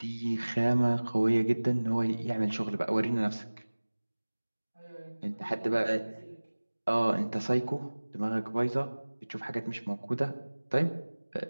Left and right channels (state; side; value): inverted; both; correlation -1.00